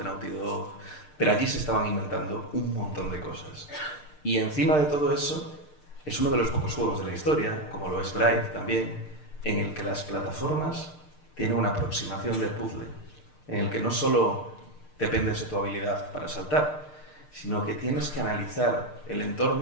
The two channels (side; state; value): right; late; 6.6 ms